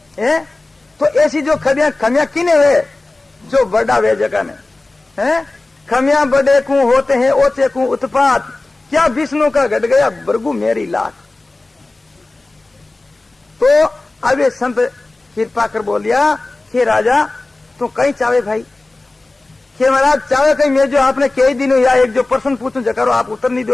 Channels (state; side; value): quieter; right; 3.1 dB